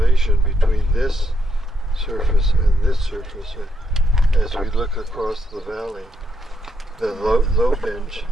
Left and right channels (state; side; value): normal; both; correlation 0.78